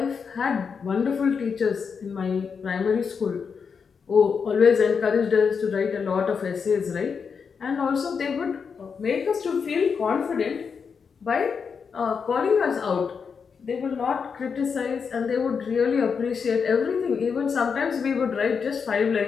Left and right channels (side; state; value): right; quieter; 6.0 dB